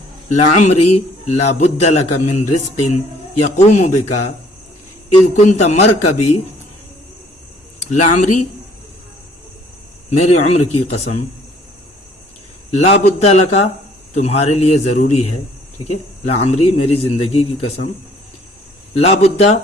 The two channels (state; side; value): normal; both; correlation 0.59